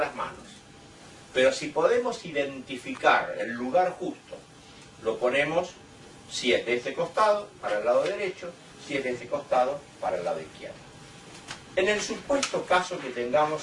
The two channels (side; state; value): both; identical; correlation 1.00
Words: manos. Pero si podemos identificar el lugar justo, lo ponemos, si es de este costado, para el lado derecho, si es de este costado, para el lado izquierdo. En el supuesto caso que